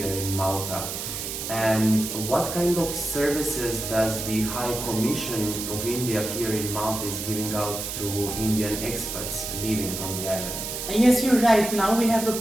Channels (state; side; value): noise; right; hiss, 5 dB below the sound